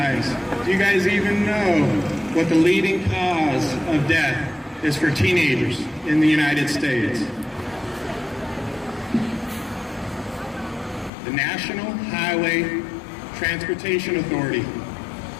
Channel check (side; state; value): right; drops out; at 11.1 s